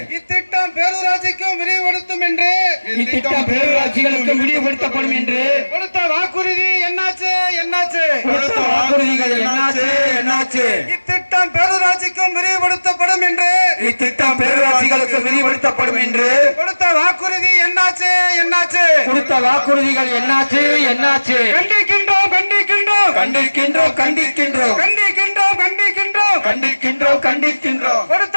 இத்திட்டம் பேரூராட்சிக்கும் விரிவுபடுத்தும் என்று, இத்திட்டம் பேரூராட்சிகளுக்கு விரிவுபடுத்தப்படும் என்று கொடுத்த வாக்குறுதி என்னாச்சு? என்னாச்சு? கொடுத்த வாக்குறுதிகள் என்னாச்சு? என்னாச்சு? இத்திட்டம் பேரூராட்சிக்கும் விரிவுபடுத்தப்படும் என்று, இத்திட்டம் பேரூராட்சிகளுக்கு விரிவுபடுத்தப்படும் என்று கொடுத்த வாக்குறுதி என்னாச்சு? என்னாச்சு? கொடுத்த வாக்குறுதிகள் என்னாச்சு? என்னாச்சு? கண்டிக்கின்றோம், கண்டிக்கின்றோம், கண்டிக்கின்றோம், கண்டிக்கின்றோம், கண்டிக்கின்றோம், கண்டிக்கின்றோம், கண்டிக்கின்றோம், கண்டிக்கின்றோம். கொடுத்த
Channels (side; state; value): both; inverted; correlation -1.00